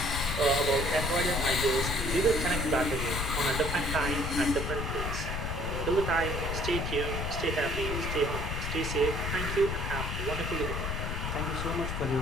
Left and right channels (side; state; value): left; noise; rumble, 2 dB below the sound